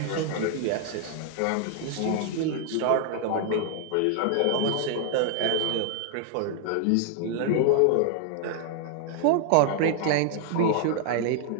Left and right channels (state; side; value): different; both; correlation 0.00